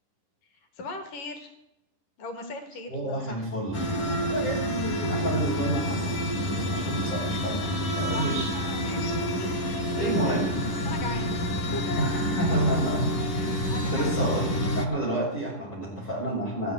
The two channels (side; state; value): right; late; 10 ms